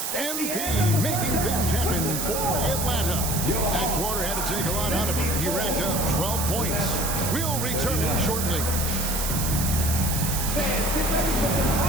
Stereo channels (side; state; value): right; noise; hiss, 2 dB below the sound